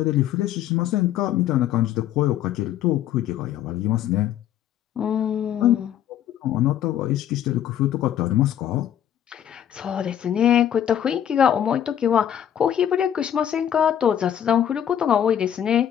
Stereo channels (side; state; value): right; quieter; 10.3 dB